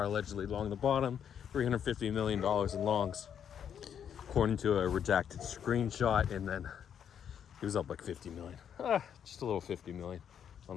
allegedly long the bottom, $350 million in longs, according to a redacted screenshot, and then he was up like 50 million. Just a little 50 million on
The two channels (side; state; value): right; quieter; 8.5 dB